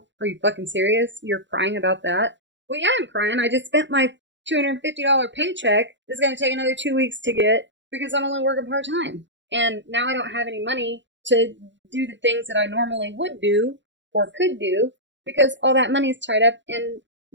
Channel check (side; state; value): left; late; 0.53 ms